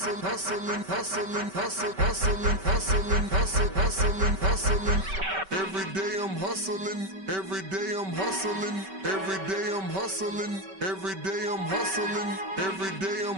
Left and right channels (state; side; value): late; left; 5.2 ms